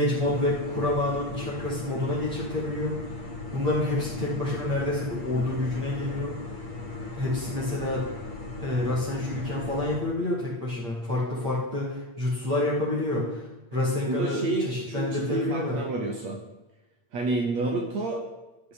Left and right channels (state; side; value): late; left; 8.6 ms